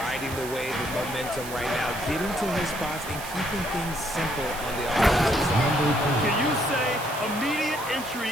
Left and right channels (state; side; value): noise; right; hiss, 12 dB below the sound